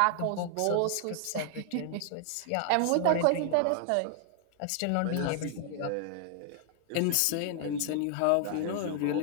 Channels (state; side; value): different; both; correlation 0.00